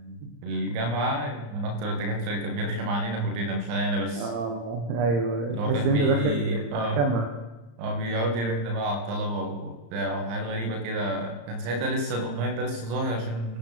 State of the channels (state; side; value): late; left; 35 ms